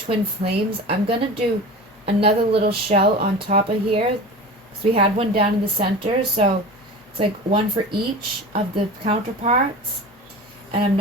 flames, I'm going to do another little shell on top of here. So we had one down in the center, so it's like one for each of the counterparts. And I'm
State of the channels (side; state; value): both; normal; correlation 0.33